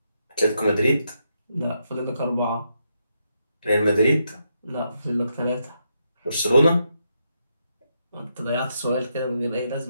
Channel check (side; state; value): both; inverted; correlation -0.81